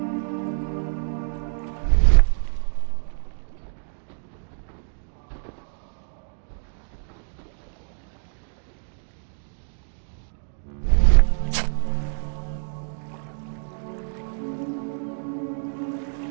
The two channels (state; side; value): silent; left; digital silence